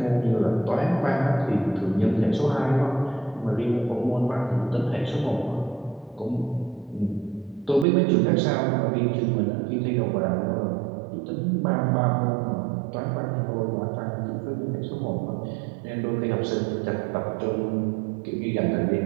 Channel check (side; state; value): left; drops out; at 7.9 s